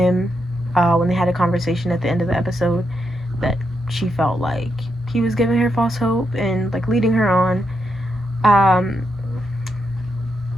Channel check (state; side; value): normal; both; correlation 0.82